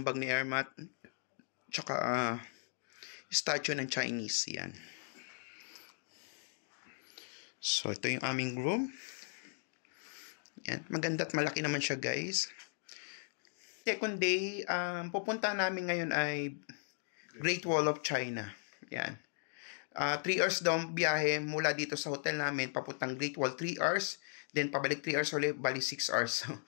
bag ni Airmat. Tsaka statue ng Chinese. Yan. So, ito yung aming room. Yan. Maganda at malaki naman siya, guys. Second day, pupunta namin ngayon ay Great Wall of China. Yan. 3 hours daw biyahe mula dito sa hotel namin papuntang Great Wall. 3 hours. Then, pabalik 3 hours ulit. Bali 6 hours.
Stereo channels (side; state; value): right; silent; digital silence